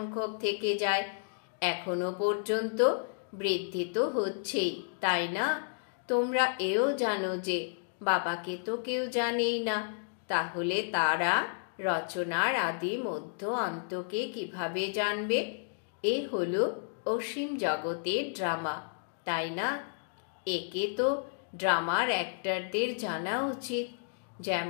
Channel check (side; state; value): right; silent; digital silence